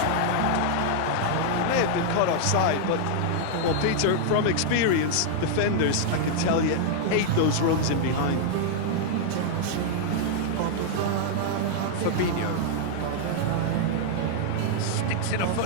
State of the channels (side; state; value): both; different; correlation -0.01